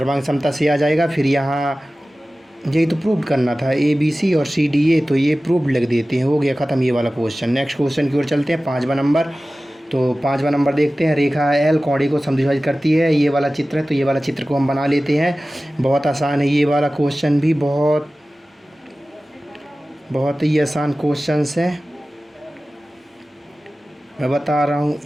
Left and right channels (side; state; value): both; normal; correlation 0.96